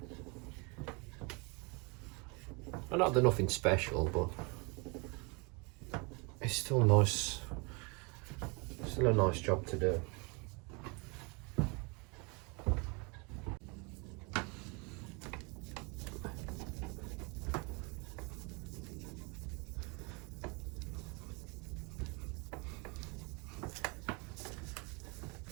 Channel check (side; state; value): left; quieter; 30.7 dB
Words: I know they're nothing special, but it's still nice. Still a nice job to do.